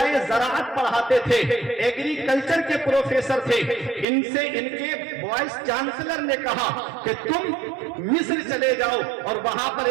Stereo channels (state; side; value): drops out; left; at 4.0 s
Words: ज़राअत पढ़ाते थे, एग्रीकल्चर के प्रोफेसर थे। इनसे इनके वाइस चांसलर ने कहा कि तुम मिस्र चले जाओ और वहां पर